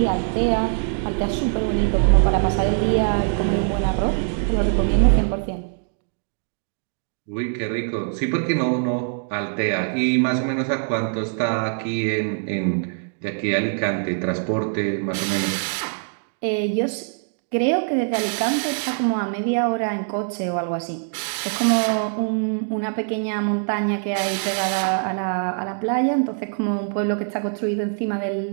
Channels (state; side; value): silent; left; digital silence